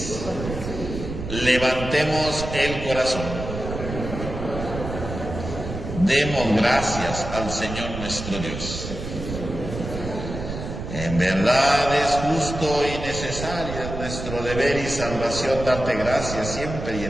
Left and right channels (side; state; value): right; noise; rumble, 7 dB below the sound